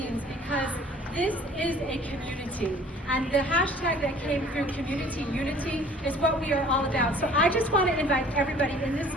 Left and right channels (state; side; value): normal; both; correlation 0.52